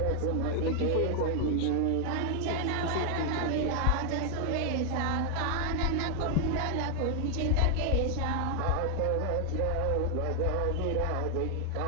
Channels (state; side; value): different; both; correlation 0.00